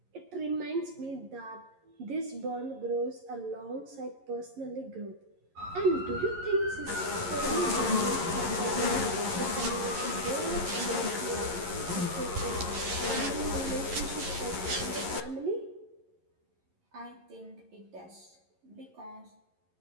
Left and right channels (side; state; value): left; late; 11 ms